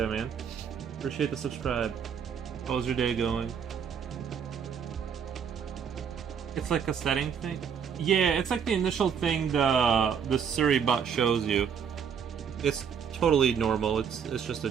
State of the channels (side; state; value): left; quieter; 7.3 dB